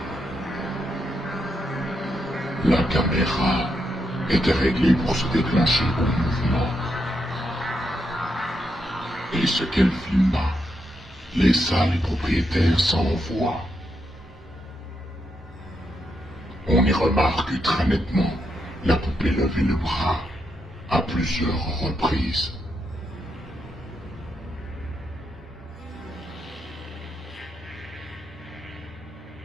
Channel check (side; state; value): both; normal; correlation 0.81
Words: La caméra était réglée pour se déclencher au mouvement. Et ce qu'elle filma laissa les propriétaires sans voix. On y remarque très nettement la poupée lever le bras à plusieurs reprises.